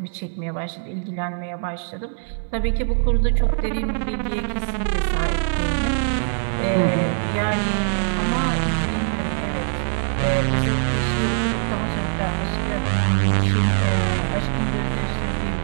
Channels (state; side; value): silent; left; digital silence